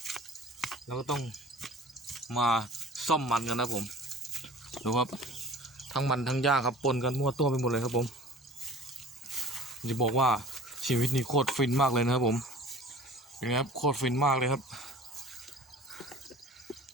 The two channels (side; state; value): both; normal; correlation 0.44